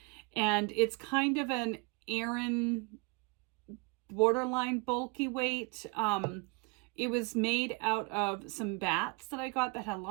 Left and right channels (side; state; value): left; quieter; 28.9 dB